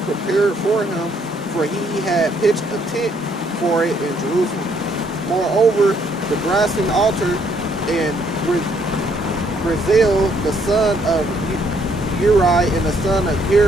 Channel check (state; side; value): normal; both; correlation 0.68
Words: prepared for him, for he had pitched a tent for it in Jerusalem. Moreover, the brazen altar and Brazil, the son of Uri and the son of